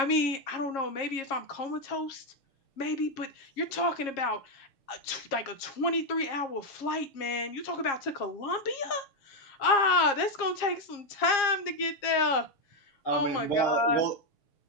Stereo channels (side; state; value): right; late; 7.3 ms